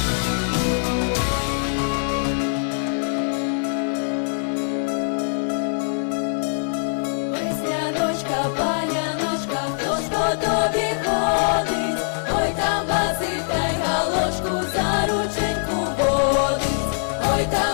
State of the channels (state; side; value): silent; right; digital silence